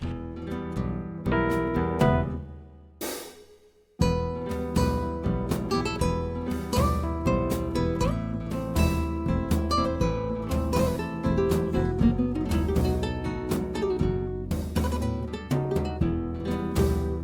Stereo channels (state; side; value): identical; both; correlation 1.00